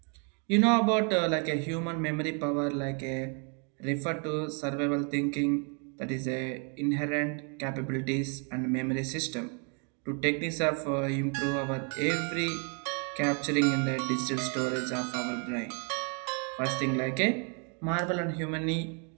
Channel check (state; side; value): quieter; left; 37.7 dB